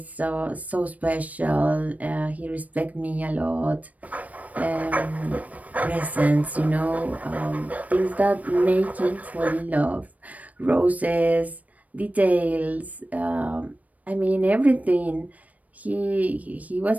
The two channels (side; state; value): left; late; 0.071 ms